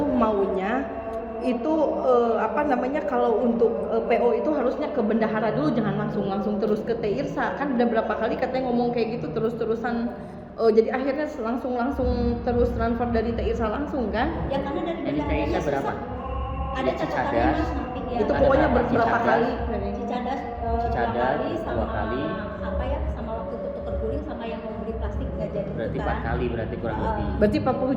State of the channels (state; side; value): identical; both; correlation 1.00